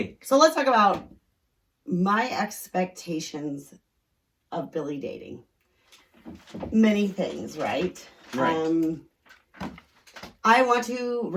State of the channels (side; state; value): both; identical; correlation 1.00